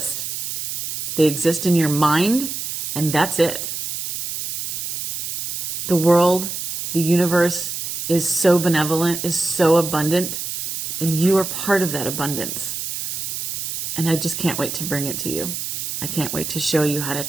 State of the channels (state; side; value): noise; right; hiss, 4 dB below the sound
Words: They exist in your mind, and that's it. The world, the universe is so benevolent, is so abundant, and you are part of that abundance. And I just can't wait to bring it to you. I can't wait to show you how to